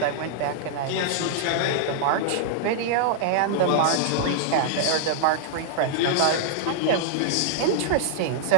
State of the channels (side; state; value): both; different; correlation -0.01